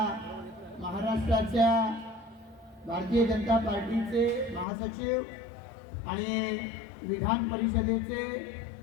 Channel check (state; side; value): drops out; right; at 4.7 s